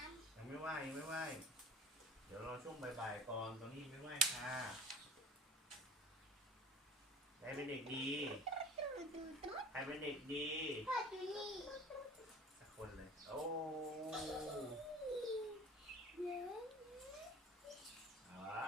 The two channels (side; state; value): both; normal; correlation 0.44